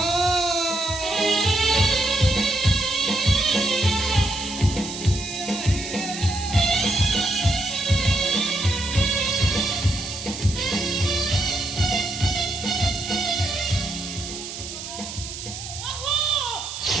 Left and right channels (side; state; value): right; noise; hiss, 9 dB below the sound